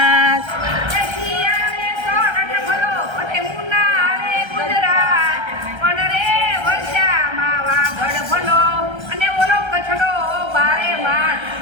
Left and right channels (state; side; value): late; left; 1.3 ms